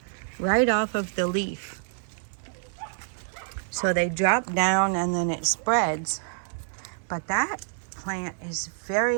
right off of the leaf. So they drop down and then it spreads. But that plant is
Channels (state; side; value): silent; left; 60 dB below the other